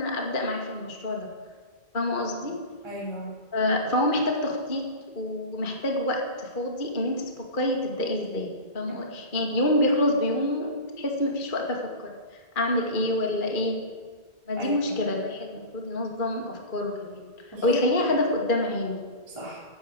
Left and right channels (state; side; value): late; right; 2.4 ms